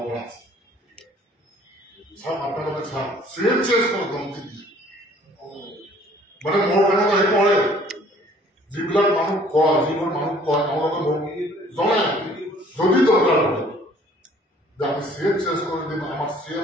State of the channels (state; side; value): normal; both; correlation 0.56